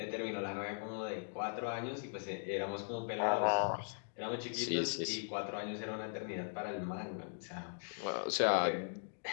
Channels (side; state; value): right; silent; digital silence